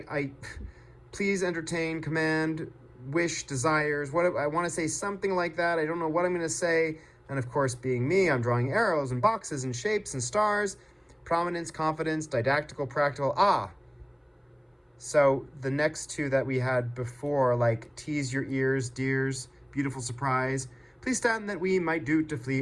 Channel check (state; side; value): identical; both; correlation 1.00